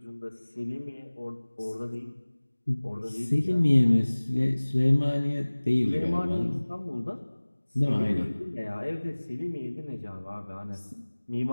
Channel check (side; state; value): both; inverted; correlation -1.00